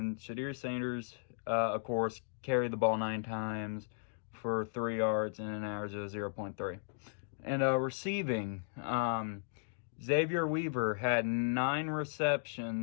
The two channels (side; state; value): right; silent; digital silence